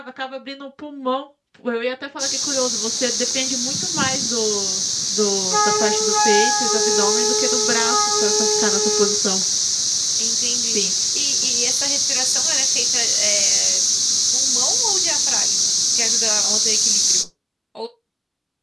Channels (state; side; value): identical; both; correlation 1.00